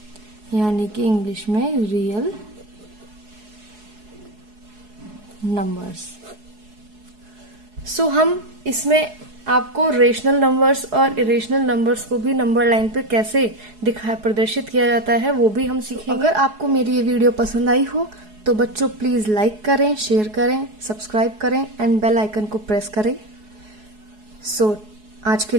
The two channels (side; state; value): left; late; 4.7 ms